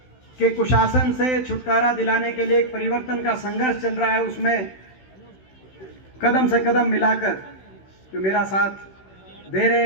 के कुशासन से छुटकारा दिलाने के लिए एक परिवर्तन का संघर्ष चल रहा है, उसमें कदम से कदम मिलाकर जो मेरा साथ दे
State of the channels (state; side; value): late; right; 16 ms